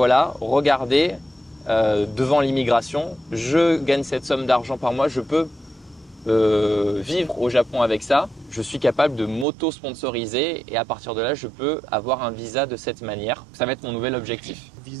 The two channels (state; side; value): drops out; left; at 9.5 s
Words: regardez, devant l'immigration, je gagne cette somme d'argent par mois, je peux vivre au Japon avec ça, je suis capable de m'auto-sponsoriser et à partir de là, je peux avoir un visa de cette manière. Ça va être mon nouvel objectif.